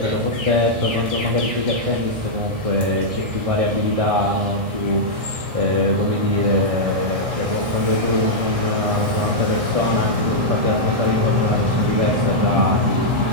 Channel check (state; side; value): late; left; 1.6 ms